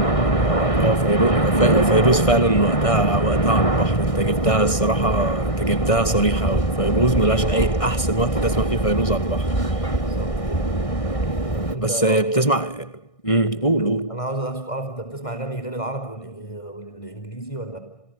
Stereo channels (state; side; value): late; right; 1.6 ms